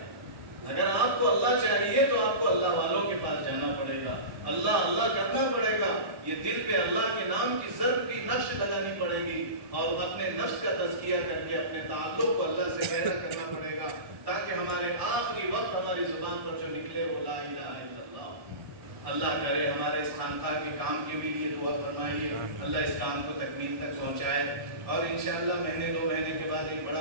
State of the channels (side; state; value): left; late; 1.1 ms